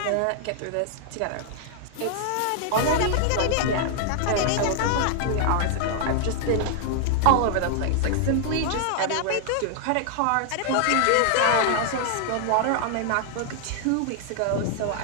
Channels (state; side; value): different; both; correlation 0.00